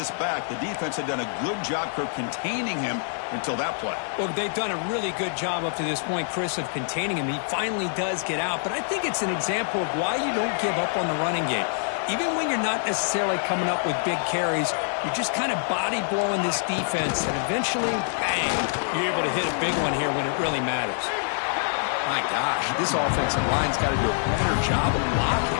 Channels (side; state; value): right; silent; 61 dB below the other